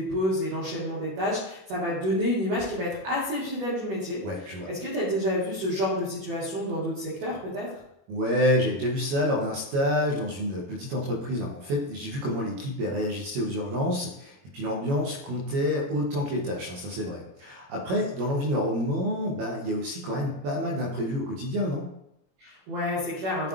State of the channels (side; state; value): left; late; 21 ms